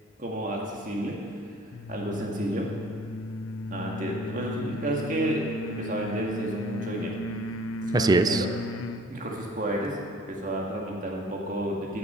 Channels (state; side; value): normal; both; correlation 0.53